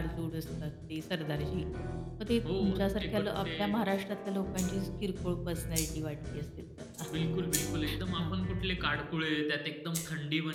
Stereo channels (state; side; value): identical; both; correlation 1.00